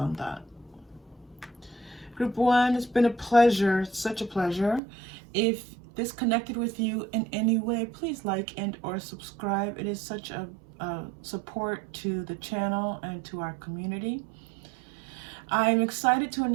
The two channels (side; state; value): left; drops out; at 4.8 s